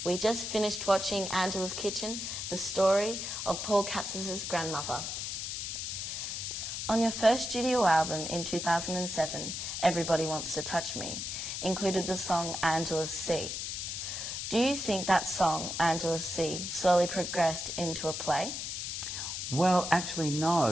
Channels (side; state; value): left; noise; hiss, 4 dB below the sound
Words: We just finished watching Angela's Kitchen, the story of Paul Capsis' grandmother. On your first studio album in 2007, Everybody Wants to Touch Me, included the song Angela's Sea. Do you think that song, Angela's Sea, slowly progressed into a play? Well, actually,